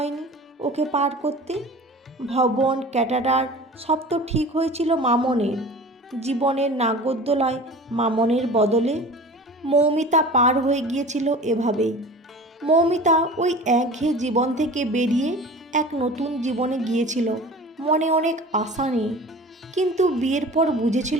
ওকে পার করতে। ভবন ক্যাটারার সব তো ঠিক হয়েছিল মামনের। জীবনের নাগরদোলায় মামনের বদলে মৌমিতা পার হয়ে গিয়েছিল এভাবেই। মৌমিতা ওই একঘেয়ে জীবন থেকে বেরিয়ে এক নতুন জীবনে গিয়েছিল, মনে অনেক আশা নিয়ে। কিন্তু বিয়ের পর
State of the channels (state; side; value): normal; both; correlation 0.39